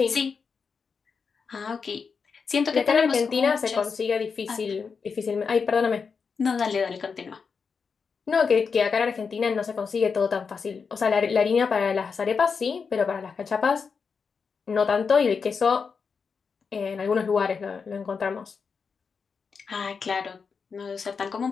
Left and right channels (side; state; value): right; quieter; 5.5 dB